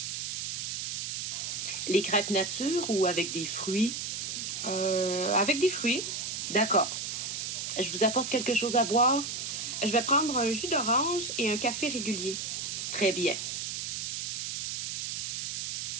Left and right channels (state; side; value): noise; right; hiss, 3 dB below the sound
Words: Les crêpes nature ou avec des fruits? Avec des fruits. D'accord. Je vous apporte quelque chose à boire? Je vais prendre un jus d'orange et un café régulier. Très bien.